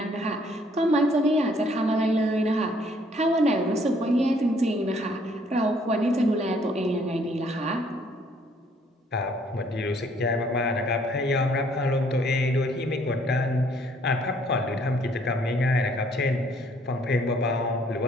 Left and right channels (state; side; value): normal; both; correlation 0.63